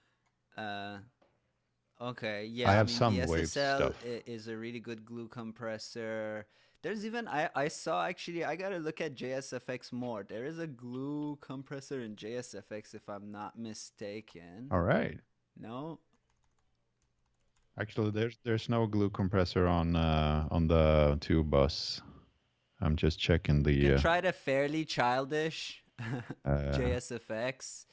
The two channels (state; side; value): identical; both; correlation 1.00